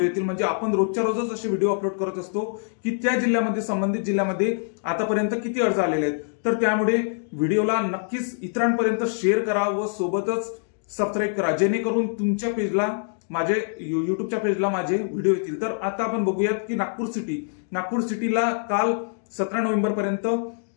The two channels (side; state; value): right; silent; digital silence